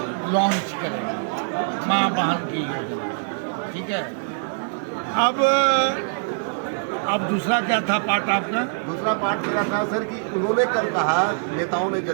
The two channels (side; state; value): left; silent; 58 dB below the other